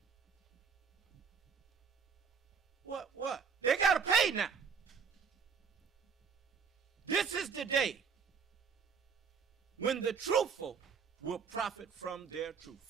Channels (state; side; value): quieter; left; 6.3 dB